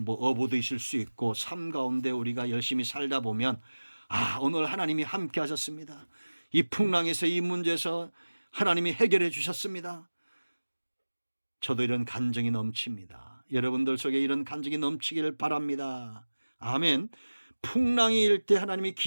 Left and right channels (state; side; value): inverted; both; correlation -1.00